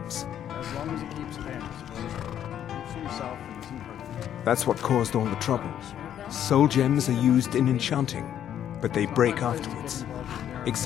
As long as he keeps paying, I suppose. Keeps himself and isn't hurting. That's what caused all the trouble. Soul gems are used in enchanting, but they break afterwards.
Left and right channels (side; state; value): right; quieter; 10.2 dB